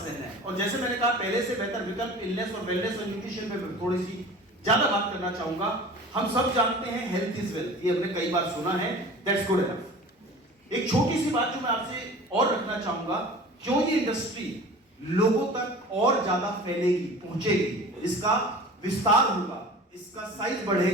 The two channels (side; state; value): both; normal; correlation 0.41